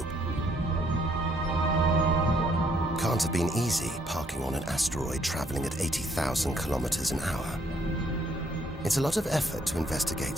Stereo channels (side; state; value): both; normal; correlation 0.68